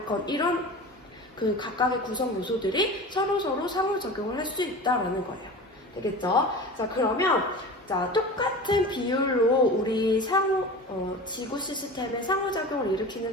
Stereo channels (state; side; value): normal; both; correlation 0.34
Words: 이런 그 각각의 구성 요소들이 서로서로 상호작용을 할 수 있다라는 거예요. 되겠죠? 자, 그러면 자, 똑같은 비율로 우리 지구 시스템의 상호작용을 일으키는